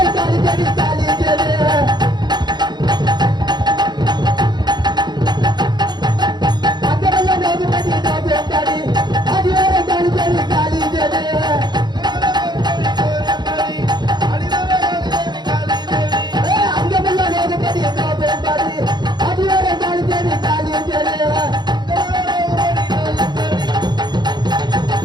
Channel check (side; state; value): left; late; 0.21 ms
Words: தாலி தேடி தாலி தேடி அங்கமெல்லாம் நோகுமதி நோகுத்தாடி அடியோரை தாலி தேடி தாலி தேடி அங்கமெல்லாம் நோகுமதி நோகுத்தாடி அடியோரை தாலி தேடி தாலி தேடி